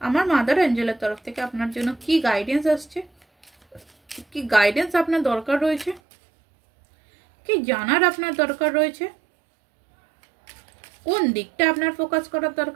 আমার মাদার এঞ্জেলের তরফ থেকে আপনার জন্য কি গাইডেন্স আসছে, কি গাইডেন্স আপনার দরকার রয়েছে, কি জানার আপনার দরকার রয়েছে, কোন দিকটা আপনার ফোকাস করার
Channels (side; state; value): left; drops out; at 6.0 s